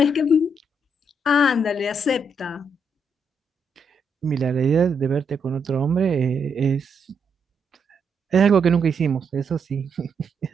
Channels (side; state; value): both; normal; correlation 0.78